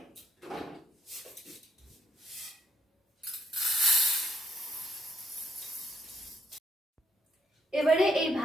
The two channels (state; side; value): normal; both; correlation 0.73